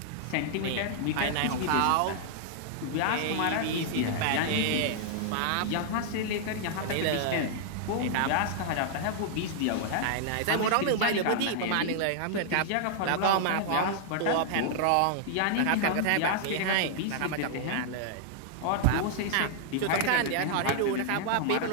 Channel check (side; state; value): both; different; correlation -0.01